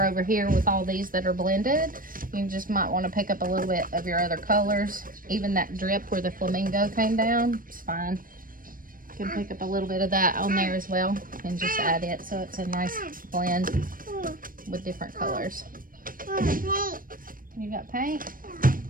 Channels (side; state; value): left; late; 0.41 ms